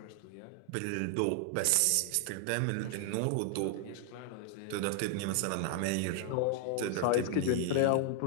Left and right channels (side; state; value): both; different; correlation 0.00